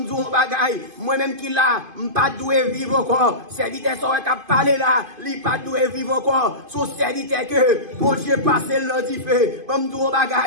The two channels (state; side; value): late; left; 2.5 ms